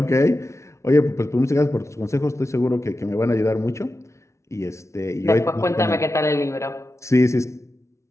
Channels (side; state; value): right; late; 0.14 ms